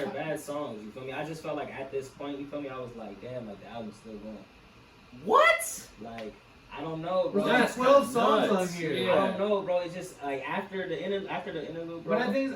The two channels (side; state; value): both; identical; correlation 1.00